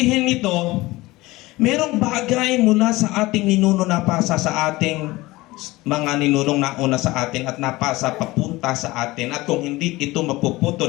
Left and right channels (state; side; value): quieter; right; 20.0 dB